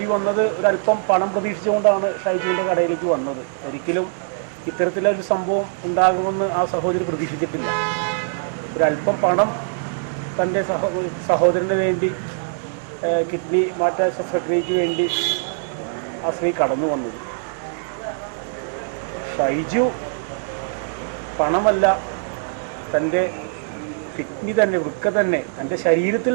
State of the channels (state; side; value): silent; left; digital silence